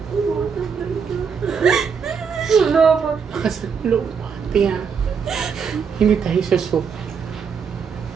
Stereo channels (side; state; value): left; quieter; 6.3 dB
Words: Pia. Hindi tayo susuk.